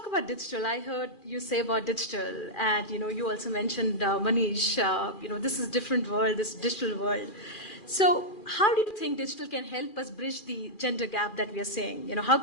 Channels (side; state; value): right; late; 2.4 ms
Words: about digital. I heard you say about digital, and you know, you also mentioned Manish. You know, this is a different world, this digital world. So, how do you think digital can help us bridge the gender gap that we are seeing? You know, how